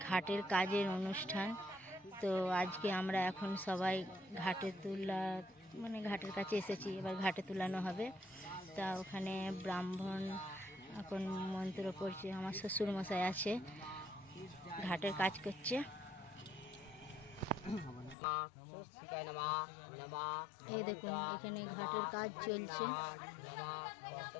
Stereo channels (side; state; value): right; drops out; at 18.2 s